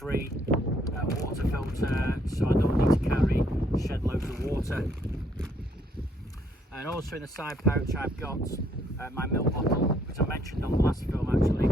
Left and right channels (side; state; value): both; normal; correlation 0.68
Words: water filter, so I don't need to carry shed loads of water. And also in the side pouch I've got my milk bottle, which I mentioned on the last film actually.